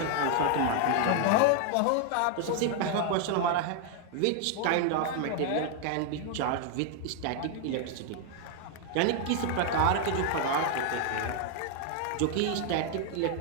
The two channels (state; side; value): different; both; correlation 0.00